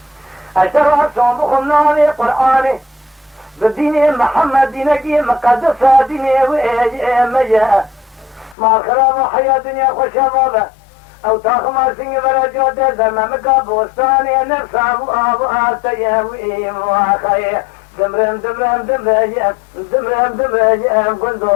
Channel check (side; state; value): right; drops out; at 8.6 s